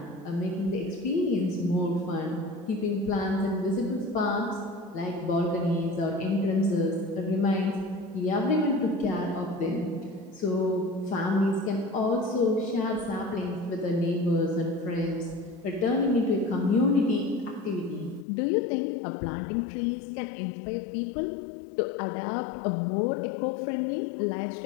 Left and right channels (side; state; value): right; drops out; at 18.2 s